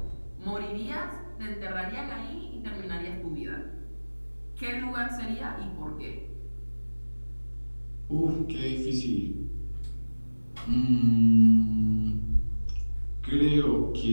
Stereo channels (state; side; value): inverted; both; correlation -1.00